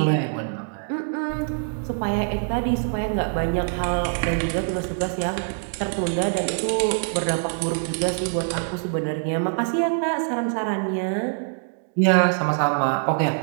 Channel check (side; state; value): left; silent; digital silence